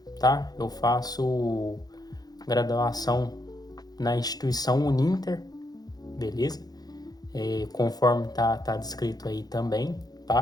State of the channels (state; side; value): late; right; 0.19 ms